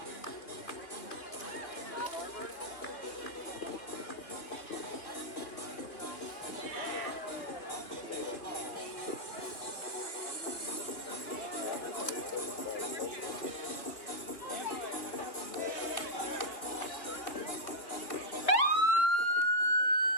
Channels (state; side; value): late; right; 3.1 ms